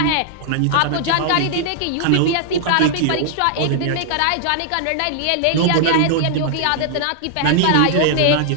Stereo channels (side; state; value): both; different; correlation -0.01